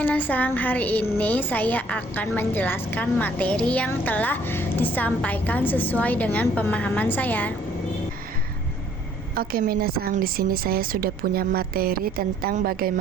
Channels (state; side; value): normal; both; correlation 0.61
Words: hari ini saya akan menjelaskan materi yang telah disampaikan sesuai dengan pemahaman saya. Oke minasang, di sini saya sudah punya materi tentang